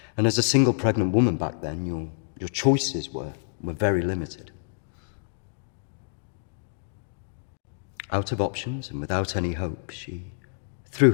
and as a single pregnant woman back then, your choices were very limited. Out of options and without any hope, she threw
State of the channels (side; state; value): right; silent; digital silence